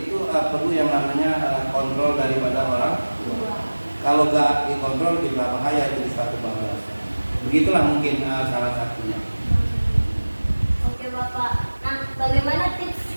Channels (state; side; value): inverted; both; correlation -1.00